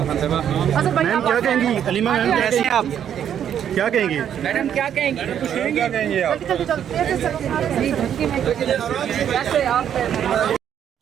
क्या कहेंगी? Aleema ma'am कैसे हैं आप? क्या कहेंगी? मैडम क्या कहेंगी? क्या कहेंगी आप?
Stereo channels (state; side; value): quieter; left; 9.4 dB